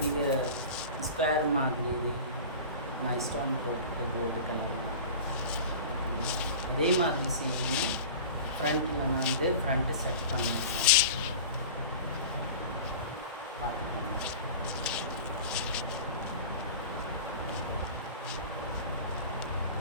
ஸ்கொயர் மாதிரி நான் ஸ்டோன் போட்டுட்டு கோல்டு கலர் தான். அதே மாதிரி செய்யணும். ஃப்ரண்ட்டில் நான் வந்து ஃப்ரண்ட்டு செட் பண்ணியிருக்கேன். பார்த்துக்கோங்க.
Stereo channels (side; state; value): both; inverted; correlation -0.35